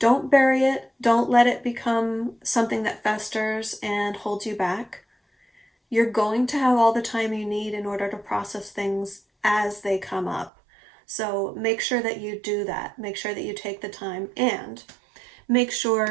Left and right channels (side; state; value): left; drops out; at 10.5 s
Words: bury it. Don't let it become something that festers and holds you back. You're going to have all the time you need in order to process things as they come up. So make sure that you do that. Make sure that you take the time, and make